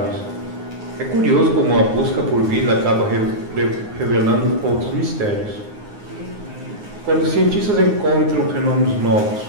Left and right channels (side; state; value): left; late; 9.6 ms